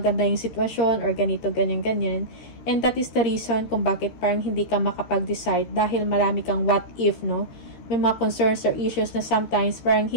yung sitwasyon or ganito, ganyan. And that is the reason kung bakit parang hindi ka makapag-decide, dahil marami kang what if, no? May mga concerns or issues na sometimes parang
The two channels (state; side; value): late; right; 13 ms